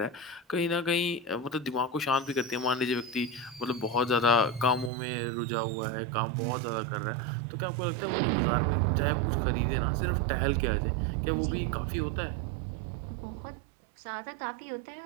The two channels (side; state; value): left; drops out; at 4.9 s